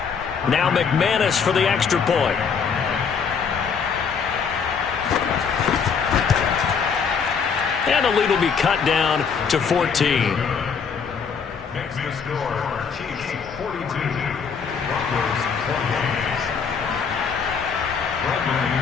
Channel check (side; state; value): right; quieter; 6.1 dB